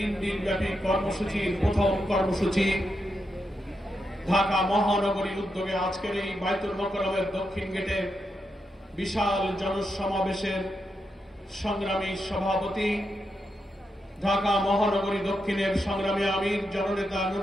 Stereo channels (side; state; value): both; normal; correlation 0.85